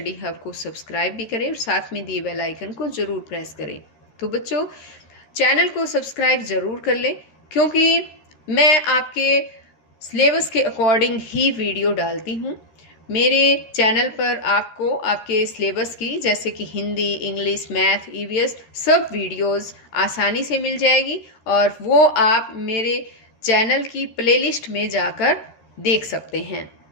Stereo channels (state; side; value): late; right; 13 ms